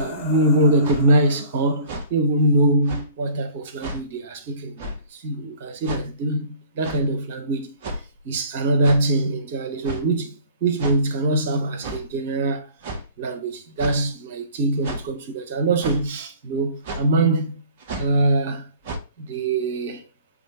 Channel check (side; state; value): both; inverted; correlation -0.51